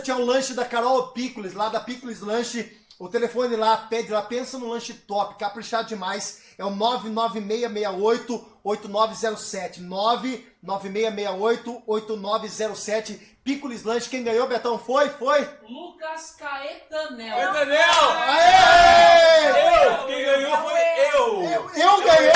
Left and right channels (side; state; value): both; identical; correlation 1.00